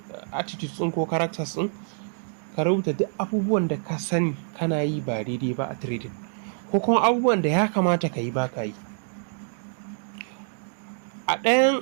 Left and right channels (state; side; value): silent; left; 61 dB below the other